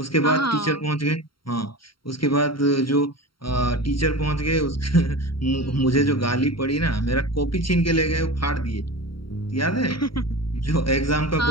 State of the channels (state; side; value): late; right; 0.73 ms